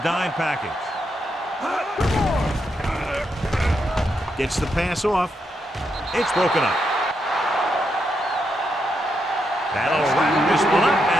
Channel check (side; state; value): both; normal; correlation 0.82